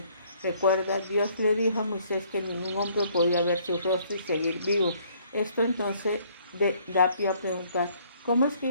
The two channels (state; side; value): inverted; both; correlation -0.63